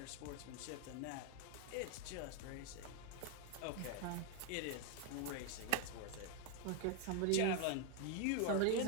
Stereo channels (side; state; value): both; different; correlation 0.01